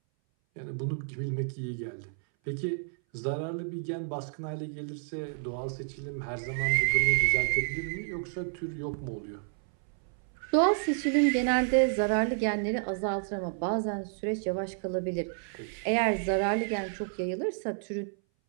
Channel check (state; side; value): silent; left; 58 dB below the other